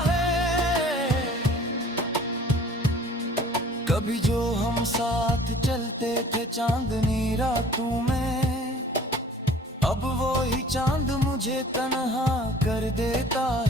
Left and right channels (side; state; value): both; normal; correlation 0.50